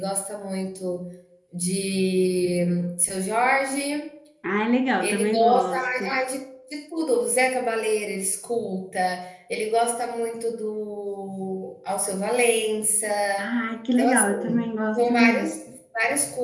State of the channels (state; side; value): identical; both; correlation 1.00